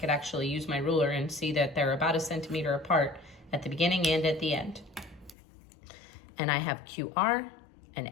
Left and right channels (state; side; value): drops out; right; at 5.4 s